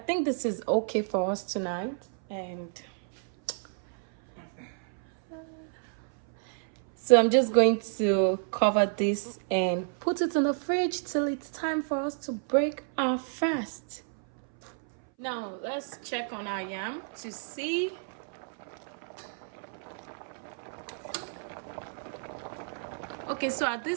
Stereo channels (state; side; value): silent; left; 58 dB below the other